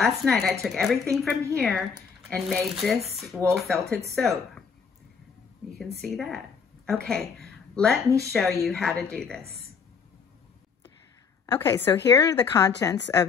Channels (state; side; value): quieter; right; 5.9 dB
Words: night I took everything from here and made this wool felted soap. You can see that. Okay. Let me show you how to do this. Okay, so here are the contents